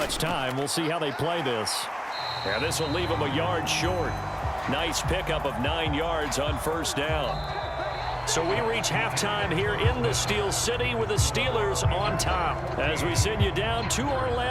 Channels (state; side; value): identical; both; correlation 1.00